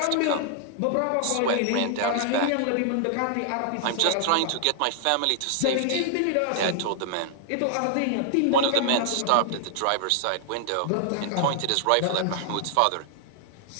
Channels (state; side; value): different; both; correlation 0.00